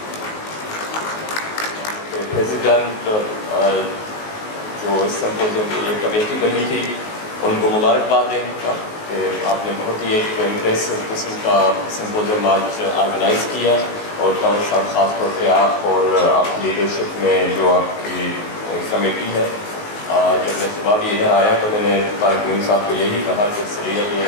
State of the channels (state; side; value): late; right; 19 ms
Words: President جو اس symposium کے لیے committee بنی تھی, ان کو مبارکباد دیں گا کہ آپ نے بہت ہی ایک امپریسو قسم کا سمپوزیم آج آرگنائز کیا. اور کنور صاحب خاص طور پہ آپ اور آپ لیڈرشپ میں جو آپ کی کمیٹی ہے, جب میں صبح بھی ادھر آیا تو میں نے طارق موین صاحب کو یہی کہا کہ اس لیے